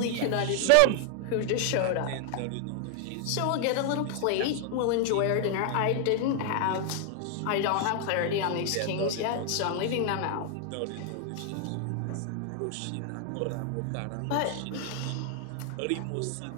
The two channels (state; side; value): different; both; correlation 0.00